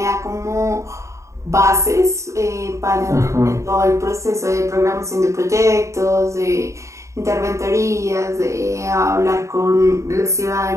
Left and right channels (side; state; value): left; late; 0.14 ms